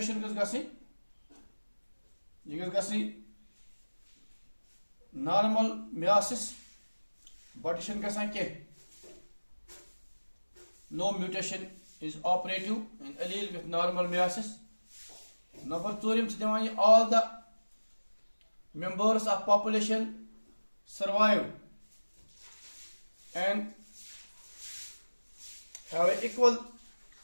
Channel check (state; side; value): inverted; both; correlation -1.00